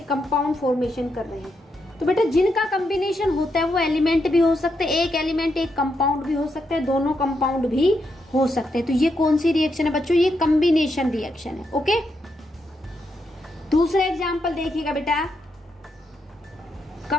कंपाउंड फॉर्मेशन कर रहे हैं। तो बेटा जिनका कॉम्बिनेशन होता है वो एलिमेंट भी हो सकते हैं, एक एलिमेंट एक कंपाउंड भी हो सकते हैं, दोनों कंपाउंड भी हो सकते हैं। तो ये कौन सी रिएक्शन है बच्चों? ये कॉम्बिनेशन रिएक्शन है। ओके, दूसरा एग्जांपल देखिएगा बेटा।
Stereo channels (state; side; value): normal; both; correlation 0.81